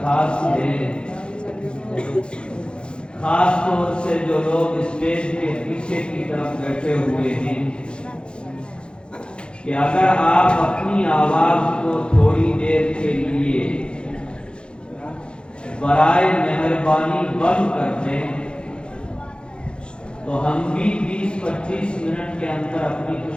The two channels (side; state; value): right; late; 0.053 ms